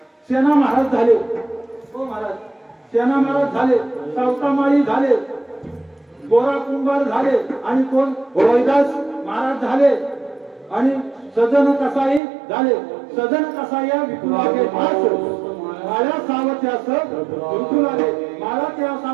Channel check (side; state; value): left; drops out; at 12.2 s